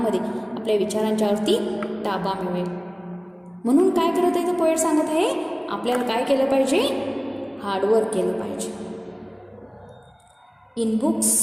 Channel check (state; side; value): identical; both; correlation 1.00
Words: आपल्या विचारांच्यावरती ताबा मिळवेल. म्हणून काय करत आहे, तर पोएट सांगत आहे आपल्याला काय केलं पाहिजे, हार्डवर्क केलं पाहिजे. इन बुक्स